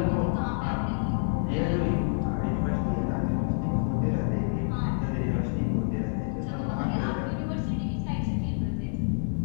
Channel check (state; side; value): silent; right; digital silence